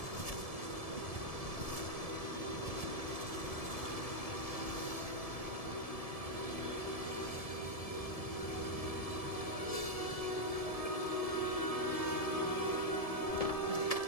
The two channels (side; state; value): right; late; 1.7 ms